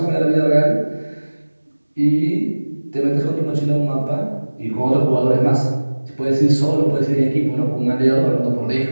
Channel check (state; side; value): inverted; both; correlation -1.00